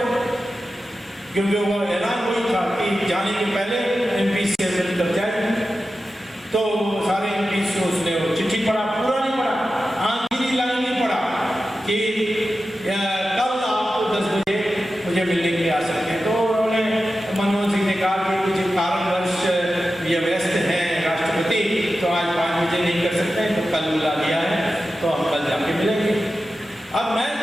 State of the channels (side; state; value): both; normal; correlation 0.92